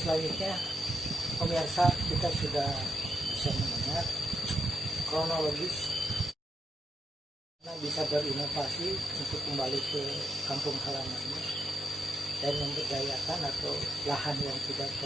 selanjutnya pemirsa kita sudah bisa mendengar kronologis bisa berinovasi untuk kembali ke kampung halamannya dan memberdayakan atau lahan yang tidak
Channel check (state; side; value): normal; both; correlation 0.82